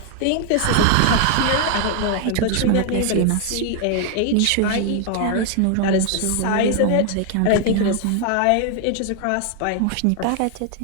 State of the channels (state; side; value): different; both; correlation 0.00